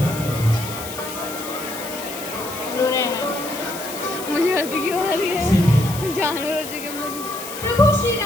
कर दीजिए। रो रहे हैं, मुझे हंसी क्यों आ रही है, जानवर हो चुके हम लोग। प्रभु श्री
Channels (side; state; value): left; noise; hiss, 11 dB below the sound